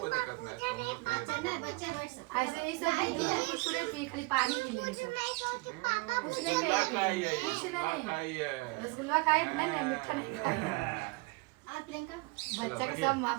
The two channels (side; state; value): left; quieter; 26.2 dB